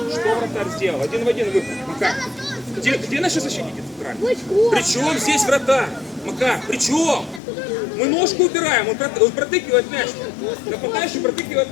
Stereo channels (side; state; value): right; drops out; at 7.4 s